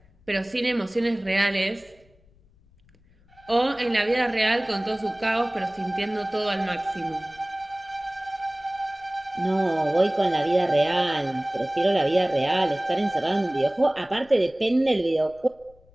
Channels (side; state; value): left; noise; rumble, 30 dB below the sound